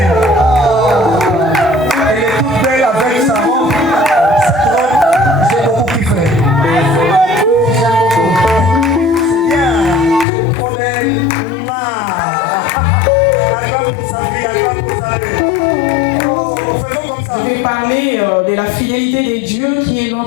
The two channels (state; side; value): drops out; right; at 10.2 s